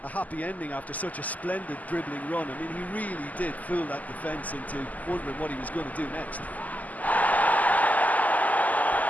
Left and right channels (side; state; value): right; late; 0.078 ms